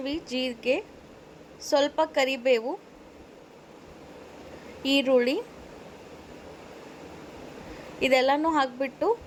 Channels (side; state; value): both; identical; correlation 1.00